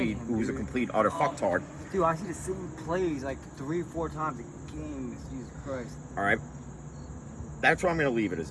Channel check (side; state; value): both; identical; correlation 1.00